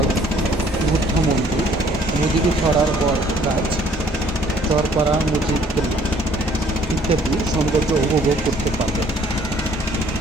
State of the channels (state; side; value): normal; both; correlation 0.59